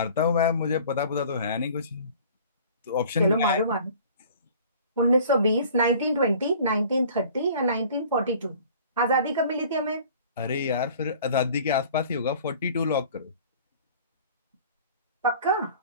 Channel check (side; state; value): both; inverted; correlation -0.48